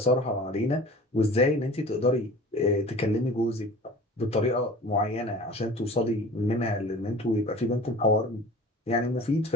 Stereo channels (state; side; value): normal; both; correlation 0.42